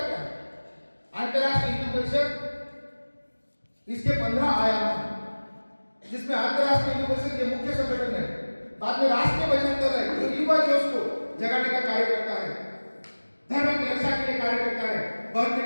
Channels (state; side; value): inverted; both; correlation -1.00